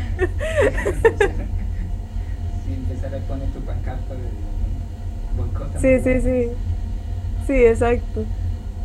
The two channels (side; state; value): both; identical; correlation 1.00